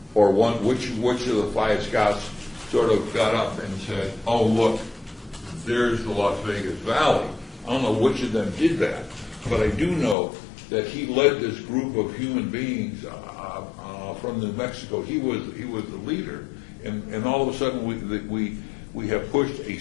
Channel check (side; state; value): right; drops out; at 10.2 s